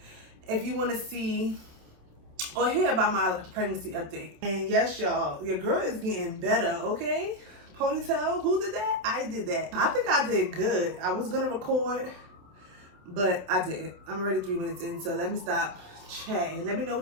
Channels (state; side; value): late; left; 27 ms